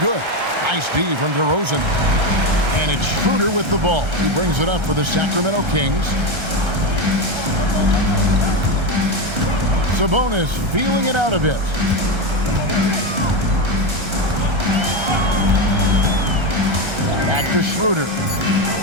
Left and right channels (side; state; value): left; late; 1.3 ms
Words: good. Nice D from DeRozan. And it's Schroeder with the ball. He brings it up for the Sacramento Kings. Sabonis feeling it out a bit. Back to Schroeder.